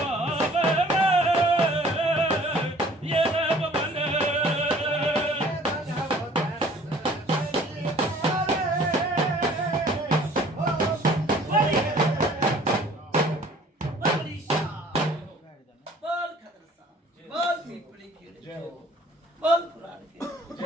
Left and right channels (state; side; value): normal; both; correlation 0.53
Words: बोल पुराण के,